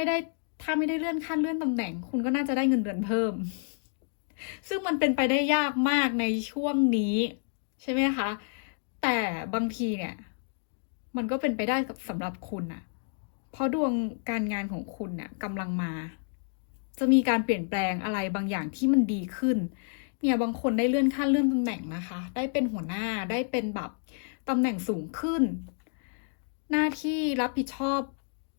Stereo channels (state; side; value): silent; right; digital silence